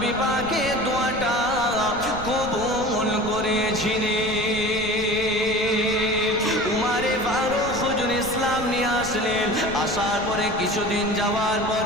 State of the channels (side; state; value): right; noise; rumble, 12 dB below the sound